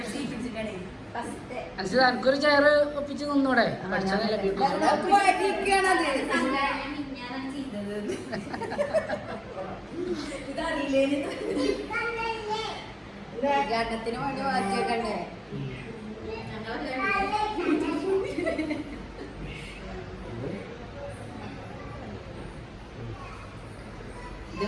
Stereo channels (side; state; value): both; identical; correlation 1.00